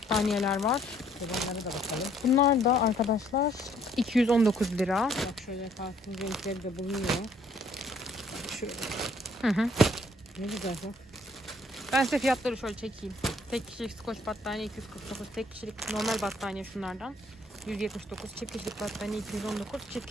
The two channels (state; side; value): normal; both; correlation 0.63